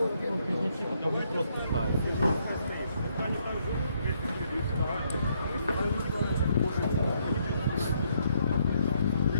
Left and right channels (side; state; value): both; inverted; correlation -0.72